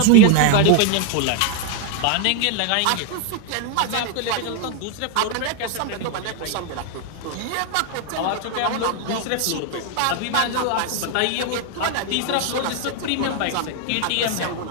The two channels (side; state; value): both; different; correlation 0.01